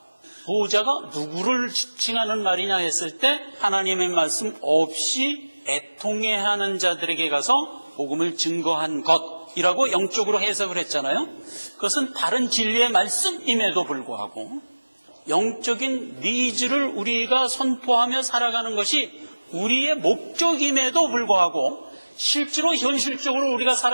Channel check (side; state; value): both; inverted; correlation -1.00